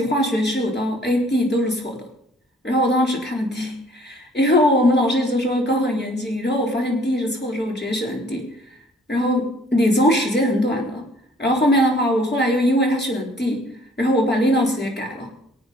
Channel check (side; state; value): both; normal; correlation 0.57